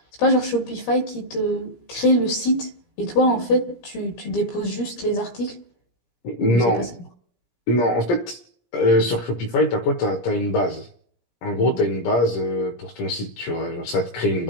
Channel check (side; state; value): right; late; 17 ms